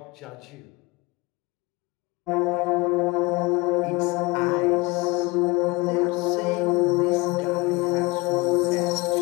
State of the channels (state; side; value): quieter; right; 24.7 dB